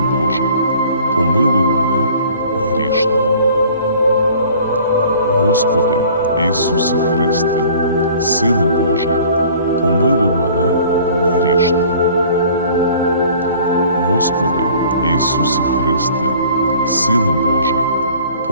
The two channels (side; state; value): both; inverted; correlation -0.50